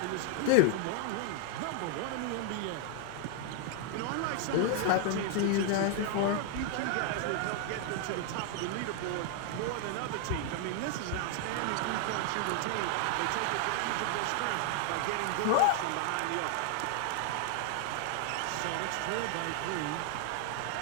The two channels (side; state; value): both; different; correlation 0.00